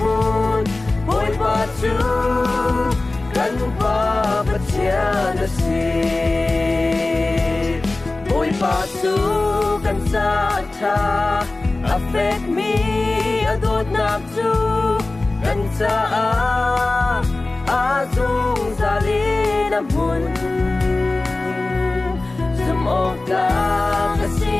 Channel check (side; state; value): right; quieter; 3.1 dB